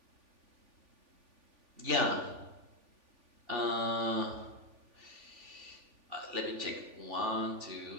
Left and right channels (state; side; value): late; left; 3.5 ms